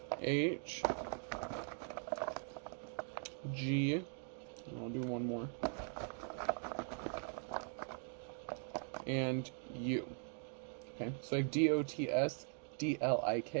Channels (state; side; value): silent; left; 50 dB below the other